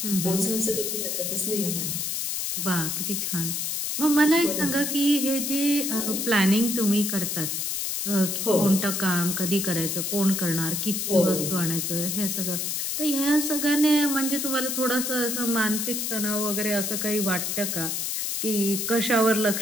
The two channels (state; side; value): noise; left; hiss, 1 dB below the sound